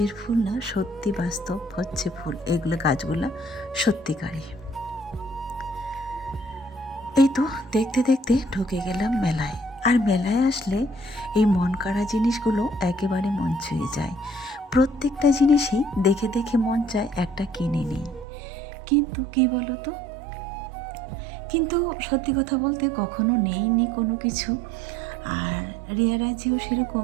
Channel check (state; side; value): drops out; left; at 18.2 s